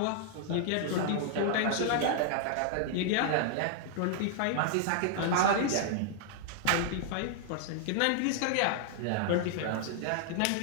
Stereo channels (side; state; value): both; different; correlation 0.00